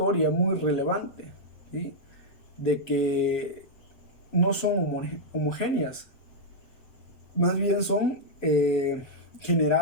muy relevante, ¿sí? De que no son homogéneas, más bien son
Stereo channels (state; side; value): late; right; 7.9 ms